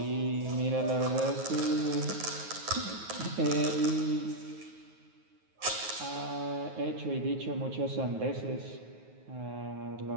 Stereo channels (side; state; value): left; late; 9.4 ms